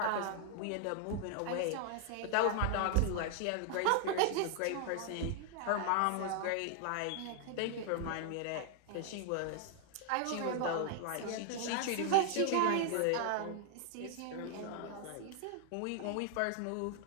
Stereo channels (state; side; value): different; both; correlation 0.00